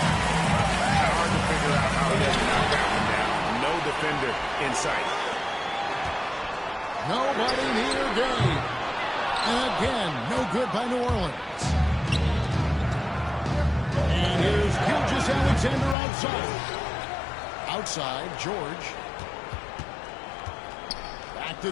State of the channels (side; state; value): right; drops out; at 16.0 s